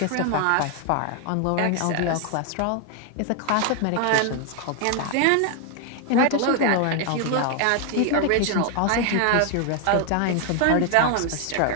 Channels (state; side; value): different; both; correlation 0.00